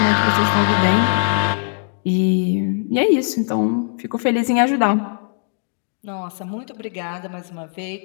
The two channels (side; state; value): right; silent; 64 dB below the other